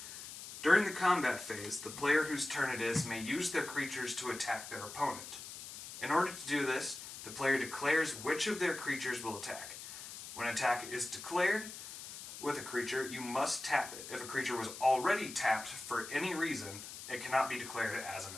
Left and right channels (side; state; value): left; noise; hiss, 11 dB below the sound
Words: During the combat phase, the player whose turn it is may use their creatures to attack their opponent. In order to do this, the player declares which of their creatures will attack. When an attack is declared with a creature, you must tap it. If a creature was already tapped for any reason, it cannot be declared as an